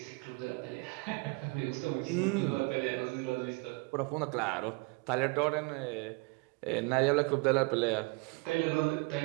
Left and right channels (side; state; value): left; quieter; 28.3 dB